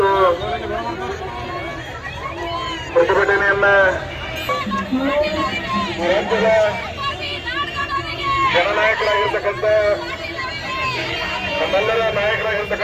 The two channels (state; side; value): identical; both; correlation 1.00